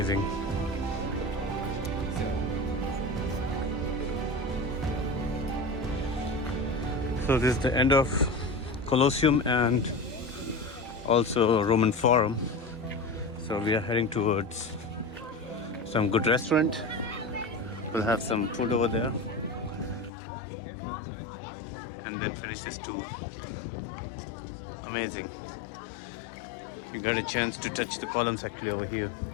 So this is the end of Colosseum and also Roman Forum. So we are heading towards some good restaurant. We'll have some food over there and then finish this tour. Amazing. We got a chance to touch the columns actually over here.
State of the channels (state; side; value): drops out; right; at 20.1 s